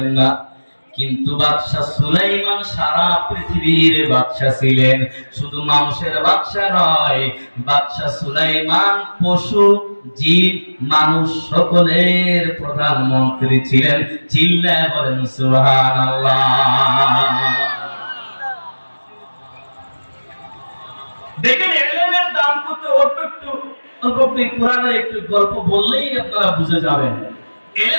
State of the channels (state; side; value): inverted; both; correlation -1.00